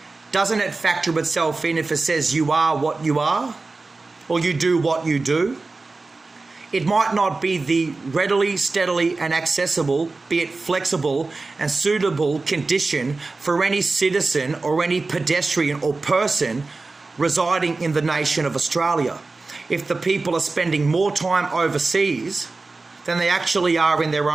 Doesn't it factor itself in if it says you are what you are, or you do what you do? It might not be the readily, steadily, and accessible, be it flexible and suitable condition for any citizen or any pedestrian or person residing in the nation of Australia. If the people are spending more time overseas than they actually are in their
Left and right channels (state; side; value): quieter; left; 3.6 dB